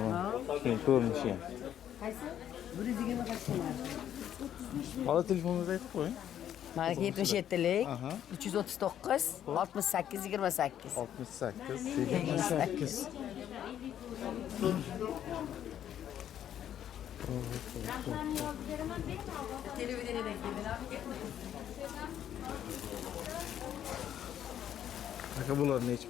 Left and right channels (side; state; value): right; quieter; 10.4 dB